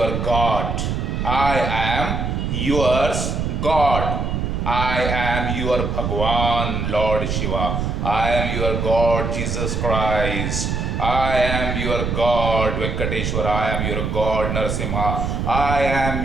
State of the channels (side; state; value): right; noise; rumble, 1 dB below the sound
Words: God. I am yours God. I am your Bhagwan Lord Shiva. I am your God Jesus Christ. I am your God Venkateshwara. I am your God Narasimha. I